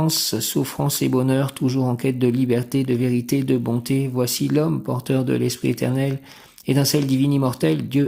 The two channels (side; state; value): both; identical; correlation 1.00